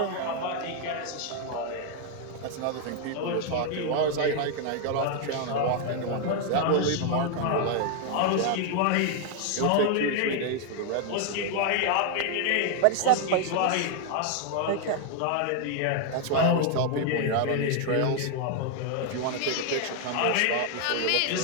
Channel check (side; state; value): both; different; correlation 0.00